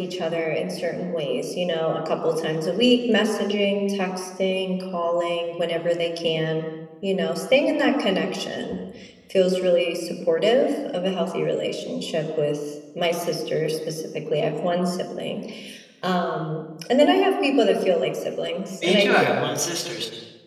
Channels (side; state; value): both; identical; correlation 1.00